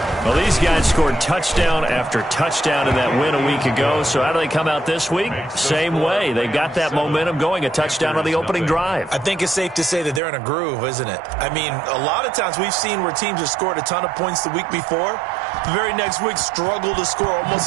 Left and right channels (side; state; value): left; drops out; at 10.2 s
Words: Well, these guys scored touchdown after touchdown in that win a week ago. So how do they come out this week? Same way. They got that momentum going, a touchdown on the opening drive. I think it's safe to say that they're in a groove, isn't it? I mean, a lot of times we've seen where teams have scored a ton of points the week before. The very next week struggle to score